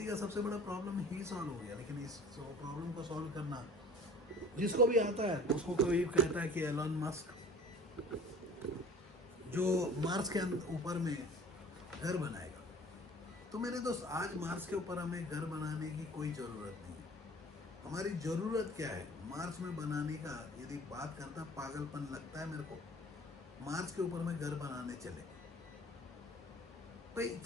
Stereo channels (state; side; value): normal; both; correlation 0.46